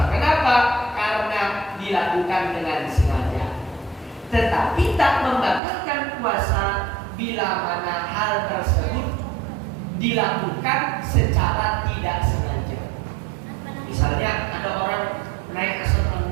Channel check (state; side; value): drops out; left; at 5.6 s